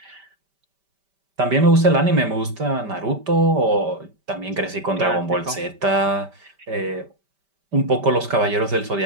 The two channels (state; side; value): late; left; 5.1 ms